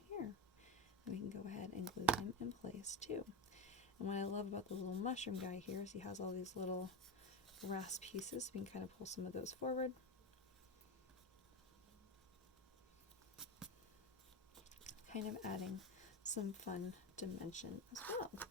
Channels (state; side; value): normal; both; correlation 0.19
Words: here. And we can go ahead and glue him in place too. And what I love about the little mushroom guy here is he has all these little grass pieces. We can kind of pull some of those forward. Kind of adding some fun dimension as well.